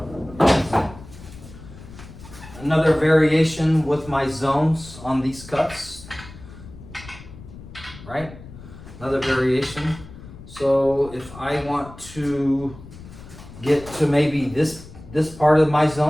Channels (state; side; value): noise; left; rumble, 17 dB below the sound